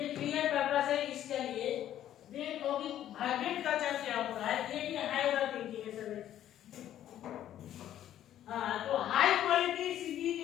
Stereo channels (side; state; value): right; quieter; 11.7 dB